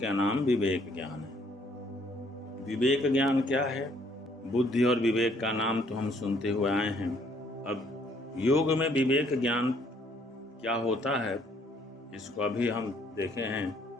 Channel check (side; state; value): both; normal; correlation 0.65